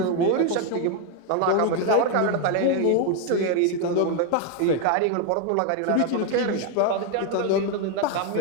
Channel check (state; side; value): different; both; correlation 0.01